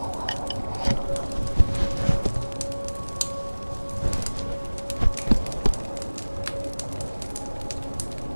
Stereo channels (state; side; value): inverted; both; correlation -1.00